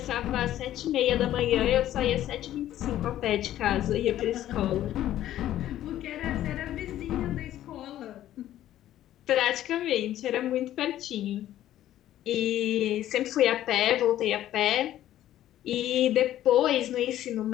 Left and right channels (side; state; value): right; quieter; 12.8 dB